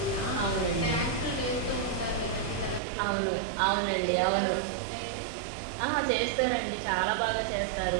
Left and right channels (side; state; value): left; drops out; at 2.8 s